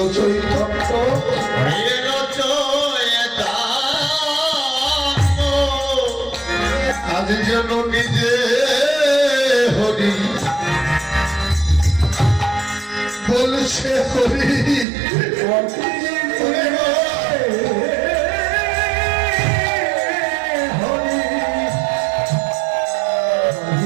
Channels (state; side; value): drops out; left; at 14.9 s